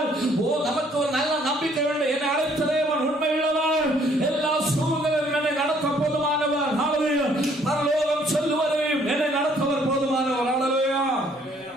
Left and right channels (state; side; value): normal; both; correlation 0.63